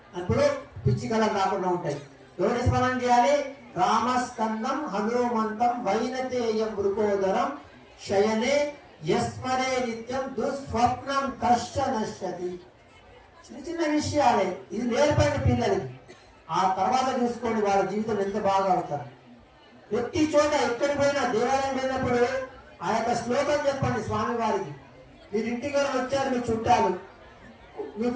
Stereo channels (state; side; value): identical; both; correlation 1.00